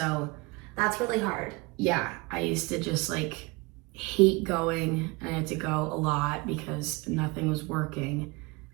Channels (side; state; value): left; quieter; 25.8 dB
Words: That's really hard. yeah, I used to just like hate going, and I had to go a lot because nothing was working.